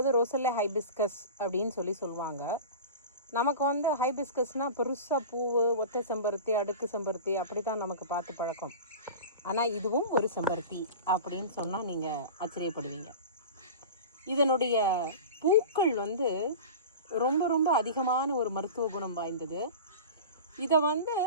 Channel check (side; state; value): both; inverted; correlation -0.32